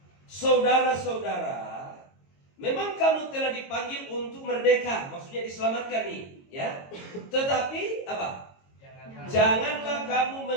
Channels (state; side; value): late; right; 22 ms